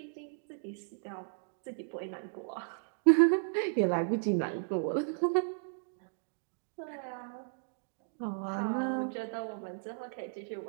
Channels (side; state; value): left; silent; digital silence